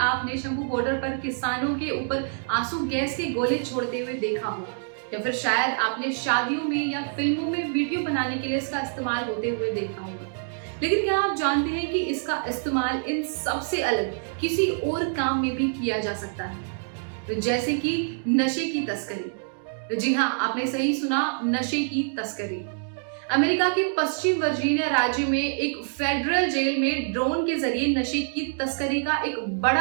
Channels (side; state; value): left; silent; digital silence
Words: Shambhu border पर किसानों के ऊपर आंसू गैस के गोले छोड़ते हुए देखा हो, या फिर शायद आपने शादियों में या फिल्मों में वीडियो बनाने के लिए इसका इस्तेमाल होते हुए देखा होगा। लेकिन क्या आप जानते हैं कि इसका इस्तेमाल इन सबसे अलग किसी और काम में भी किया जा सकता है, जैसे कि नशे की तस्करी। जी हाँ, आपने सही सुना, नशे की तस्करी। अमेरिका के पश्चिम वर्जीनिया राज्य में एक फेडरल जेल में ड्रोन के जरिए नशे की तस्करी का एक